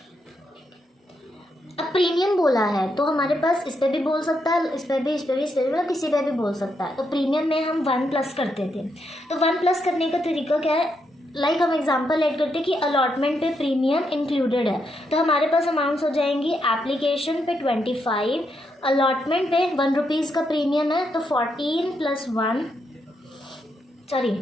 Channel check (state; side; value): normal; both; correlation 0.80